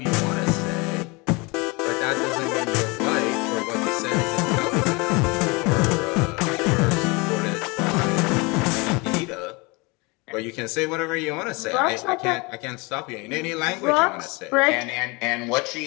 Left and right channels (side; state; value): right; quieter; 27.1 dB